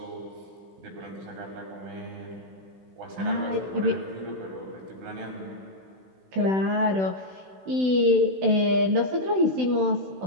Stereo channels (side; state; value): left; late; 16 ms